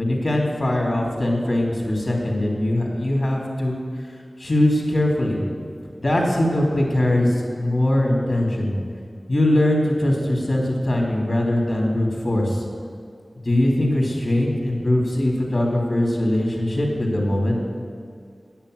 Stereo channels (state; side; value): normal; both; correlation 0.96